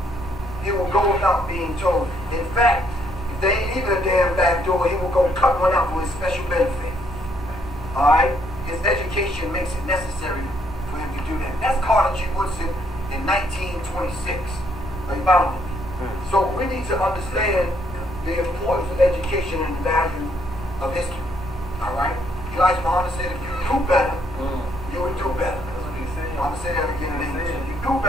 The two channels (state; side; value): normal; both; correlation 0.70